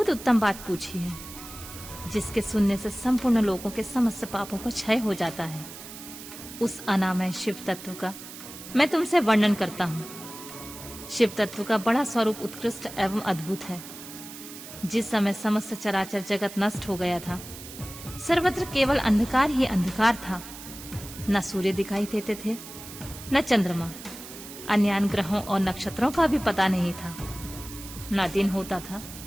उत्तम बात पूछी है, जिसके सुनने से संपूर्ण लोगों के समस्त पापों का क्षय हो जाता है। उस अनामय शिव तत्व का मैं तुमसे वर्णन करता हूँ। शिव तत्व का बड़ा स्वरूप उत्कृष्ट एवं अद्भुत है। जिस समय समस्त चराचर जगत नष्ट हो गया था, सर्वत्र केवल अंधकार ही अंधकार था। न सूर्य दिखाई देते थे, न चंद्रमा, अन्य ग्रहों और नक्षत्रों का भी पता नहीं था। न दिन होता था,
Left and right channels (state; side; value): noise; right; hiss, 14 dB below the sound